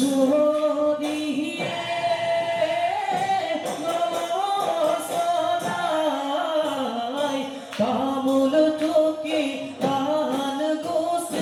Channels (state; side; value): identical; both; correlation 1.00